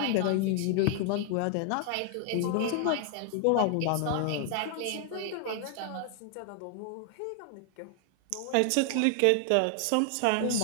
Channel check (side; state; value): both; different; correlation 0.00